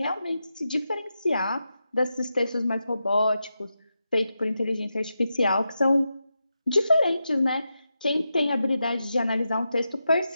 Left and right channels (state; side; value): inverted; both; correlation -0.88